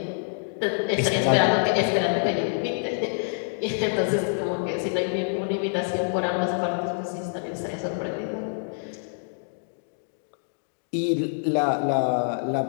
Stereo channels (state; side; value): silent; right; digital silence